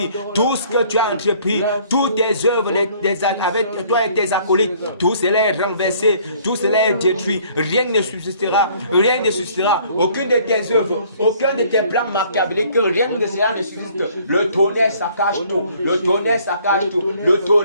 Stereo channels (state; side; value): inverted; both; correlation -0.58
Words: tout ce que tu as entrepris, toutes tes œuvres avec toi et tes acolytes, tout cela est renversé, tout cela est détruit, rien ne subsistera, aucune de tes œuvres, aucun de tes plans machiavéliques, rien de cela ne subsiste. Le tonnerre saccage tout, le